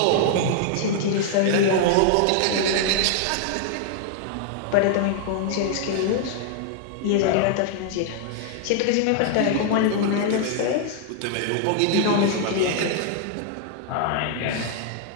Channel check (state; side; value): different; both; correlation 0.00